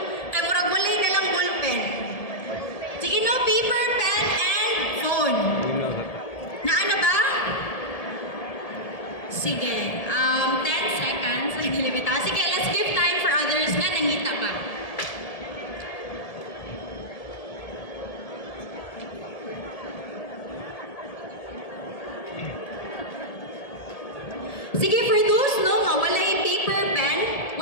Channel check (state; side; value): late; right; 1.7 ms